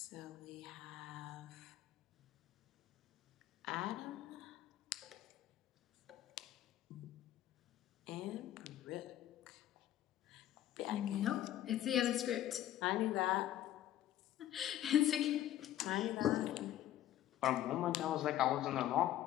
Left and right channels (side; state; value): right; quieter; 12.7 dB